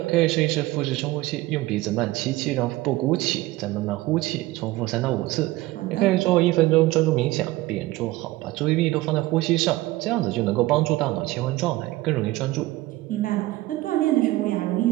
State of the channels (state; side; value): quieter; left; 18.3 dB